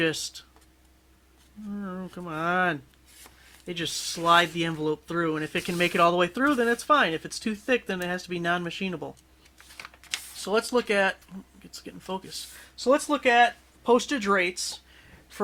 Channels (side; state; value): both; identical; correlation 1.00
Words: oh, come on. They just slide the envelope through, and if it can make it all the way through, then it's fine. If it's too thick, then it has to be non-machinable. So let's look at, it's getting focused. So let's look at postage rates